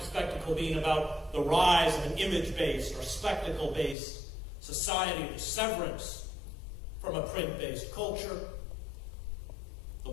Spectacle being about the rise of an image-based or spectacle-based society, the severance from a print-based culture, the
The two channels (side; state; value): right; drops out; at 4.0 s